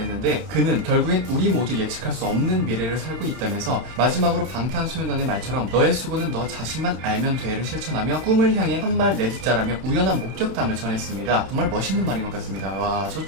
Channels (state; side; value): late; left; 32 ms